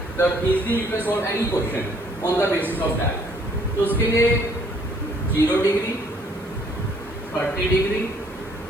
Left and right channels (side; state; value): left; noise; hiss, 26 dB below the sound